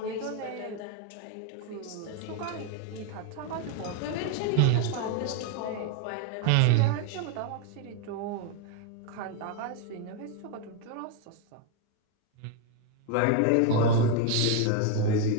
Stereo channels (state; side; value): different; both; correlation 0.01